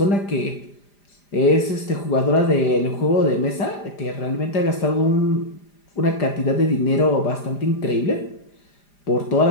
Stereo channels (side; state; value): right; late; 5.0 ms